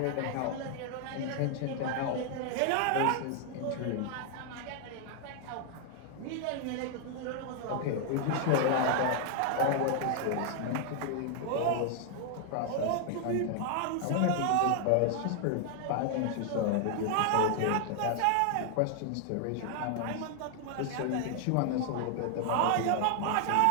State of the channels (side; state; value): both; different; correlation 0.00